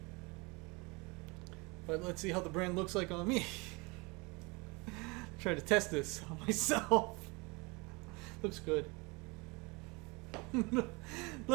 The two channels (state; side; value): quieter; left; 27.3 dB